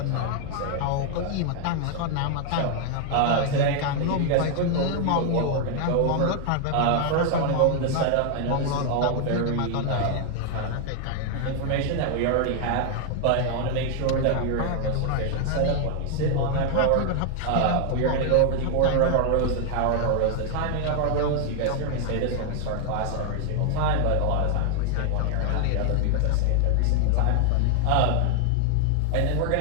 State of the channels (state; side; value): different; both; correlation 0.00